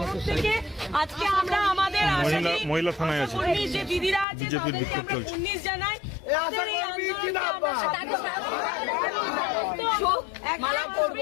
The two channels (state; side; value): drops out; right; at 4.2 s